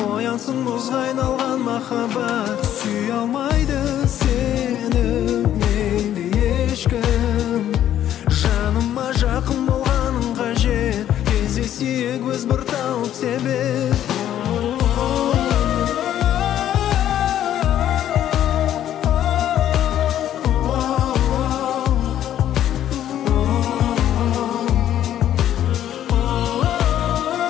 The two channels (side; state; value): right; quieter; 11.3 dB